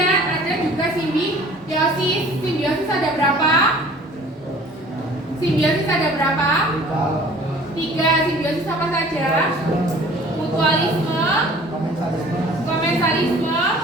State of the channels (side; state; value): both; normal; correlation 0.49